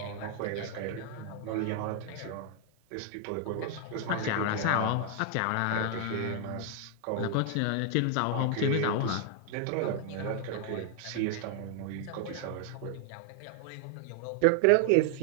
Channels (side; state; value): both; different; correlation 0.00